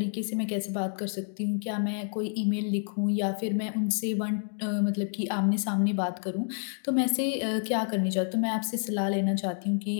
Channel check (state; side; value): silent; right; 59 dB below the other